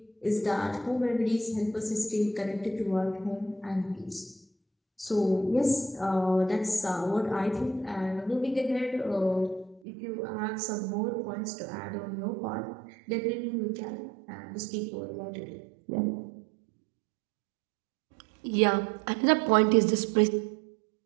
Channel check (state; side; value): drops out; left; at 9.8 s